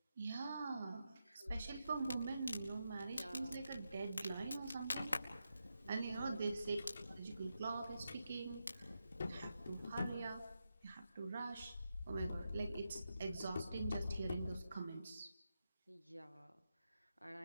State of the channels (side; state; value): both; inverted; correlation -0.87